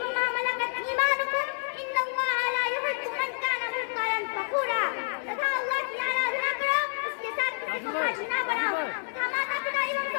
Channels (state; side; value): silent; right; 59 dB below the other